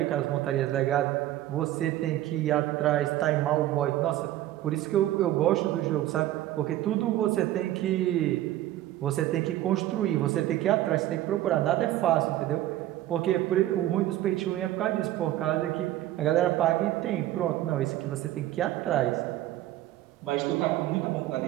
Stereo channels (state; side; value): quieter; left; 14.2 dB